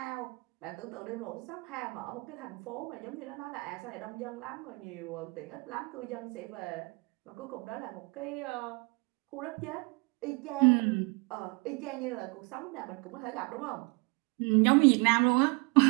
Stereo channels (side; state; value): left; quieter; 28.7 dB